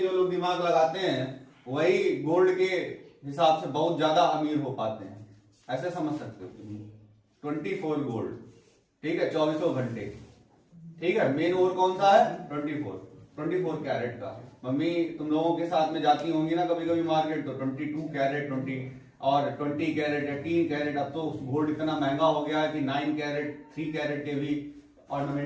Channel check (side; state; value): both; identical; correlation 1.00